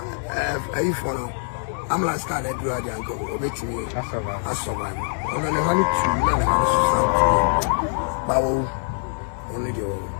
I follow. I'm last time I do a uncle. Obey me. I survive. And I never look to you. Bow only the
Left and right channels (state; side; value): silent; right; 63 dB below the other